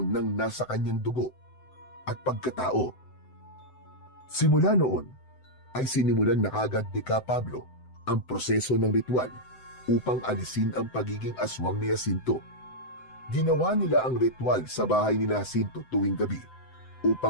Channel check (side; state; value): right; late; 7.8 ms